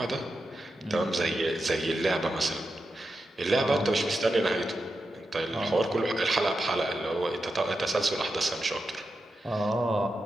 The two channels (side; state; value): both; normal; correlation 0.89